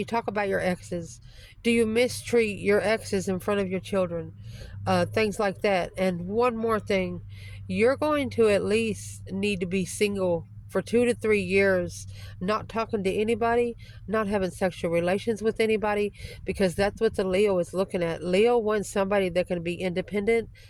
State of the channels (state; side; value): identical; both; correlation 1.00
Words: talk about your exes. Do you mistreat your exes in front of your children? Things like that. And one more thing, you're going to at least need to be single for 2 to 3 years, not talking to anybody, not having sexual relations with anybody, because that's what the Leo is looking at. Leo wants somebody that can be independent